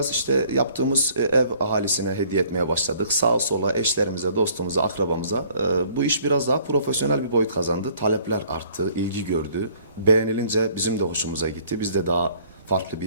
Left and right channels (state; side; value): inverted; both; correlation -0.58